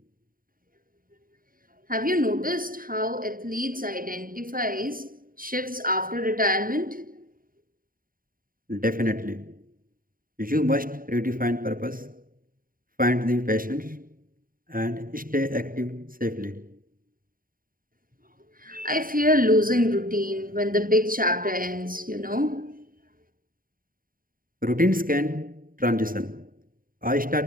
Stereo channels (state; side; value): late; left; 0.41 ms